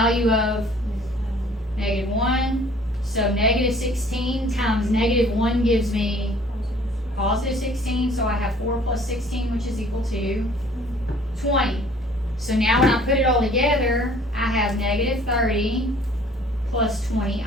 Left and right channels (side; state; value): both; normal; correlation 0.54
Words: of -1. So -16 times -1 gives me +16, so I have 4 plus 16, which is equal to 20. So now when I put it all together, I have -30 plus